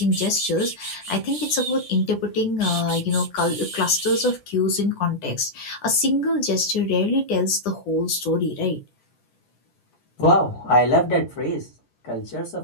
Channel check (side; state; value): right; late; 10 ms